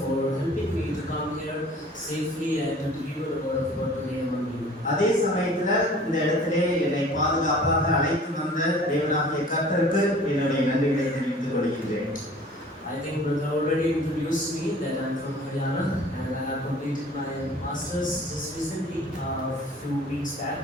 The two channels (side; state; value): both; normal; correlation 0.48